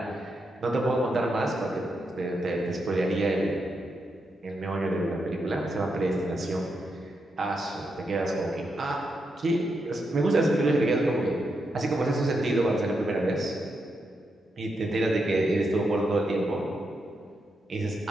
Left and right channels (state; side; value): normal; both; correlation 0.83